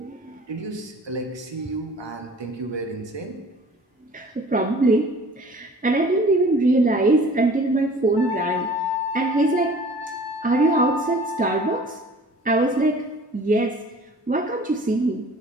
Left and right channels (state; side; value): normal; both; correlation 0.48